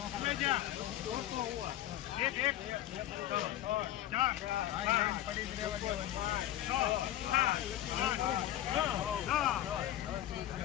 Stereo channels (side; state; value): right; quieter; 13.1 dB